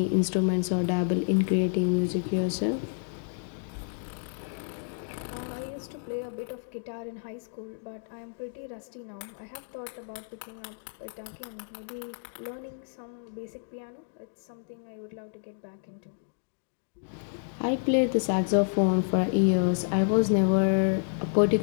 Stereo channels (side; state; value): right; silent; digital silence